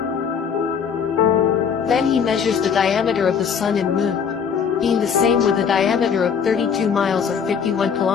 Then he measures the diameter of the sun and moon, being the same with a diameter of 32 miles or 51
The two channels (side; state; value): right; quieter; 6.9 dB